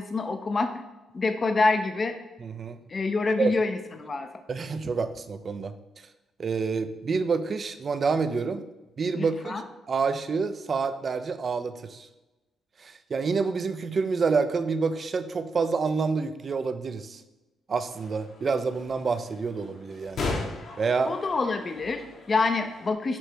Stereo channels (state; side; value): normal; both; correlation 0.85